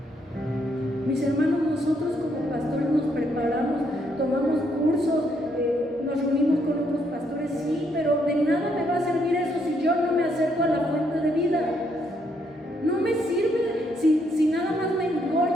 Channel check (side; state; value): both; normal; correlation 0.73